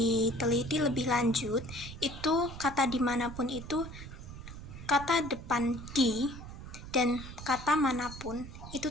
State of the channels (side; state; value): right; noise; rumble, 12 dB below the sound